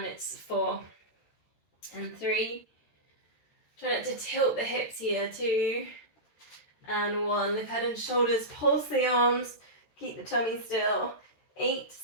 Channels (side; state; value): right; late; 13 ms